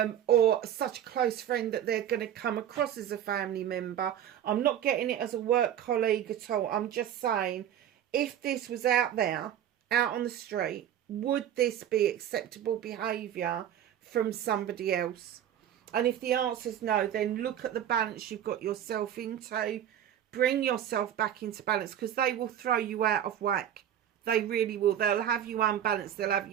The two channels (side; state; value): left; quieter; 10.4 dB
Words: or such a close friend that they're going to come across as a family member. I'm not getting it as a work colleague at all. I'm just saying, if this was out there, out on the street, would this be acceptable behaviour from somebody else? And if the answer is no, then look at the balance you've got yourself into. Bring yourself back into balance, because they will throw you out of whack. They really will. They'll have you unbalanced. They'll have